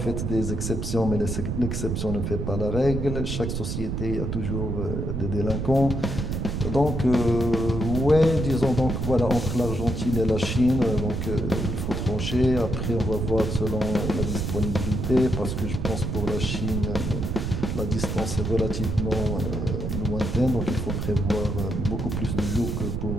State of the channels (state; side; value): noise; right; rumble, 2 dB below the sound